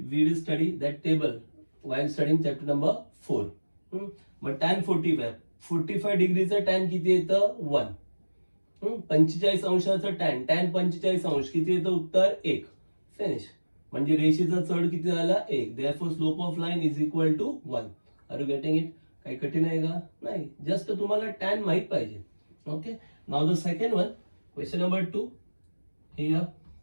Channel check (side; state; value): both; inverted; correlation -1.00